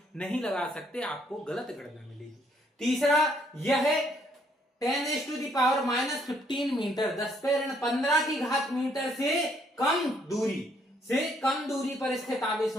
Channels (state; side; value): normal; both; correlation 0.69